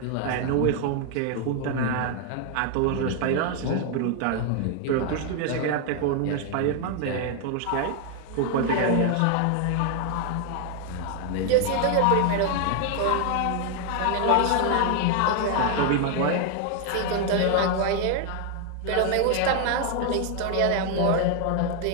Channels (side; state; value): both; different; correlation 0.00